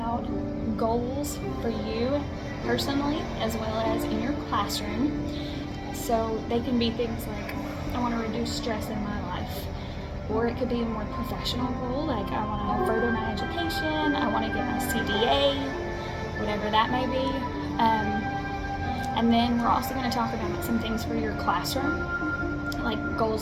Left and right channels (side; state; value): both; identical; correlation 1.00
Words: goals for you personally as well as in your classroom. So they can be things like, I want to reduce stress in my life, or it could be a more professional goal, like I want to further my education, I want to get my CDA, whatever that may be. And then we're also going to talk about some things for your classroom, like